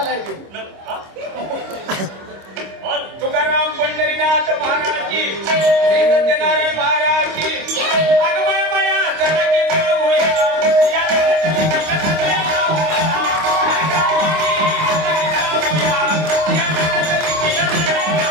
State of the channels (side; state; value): left; late; 26 ms